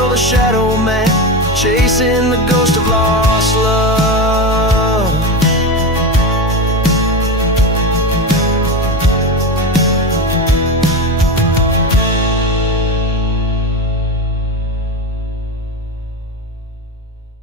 a shadow man, chasing the ghost of lost love.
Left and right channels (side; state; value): both; normal; correlation 0.20